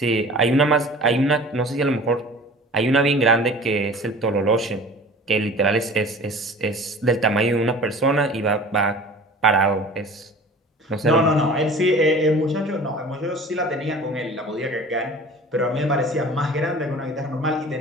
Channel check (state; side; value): normal; both; correlation 0.43